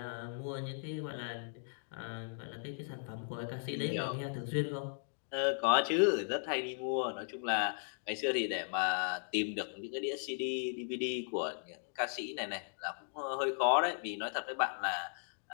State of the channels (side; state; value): right; silent; digital silence